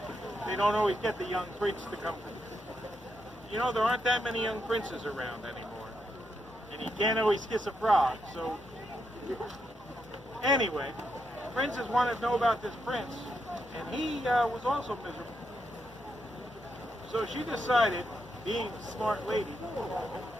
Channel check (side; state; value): both; normal; correlation 0.81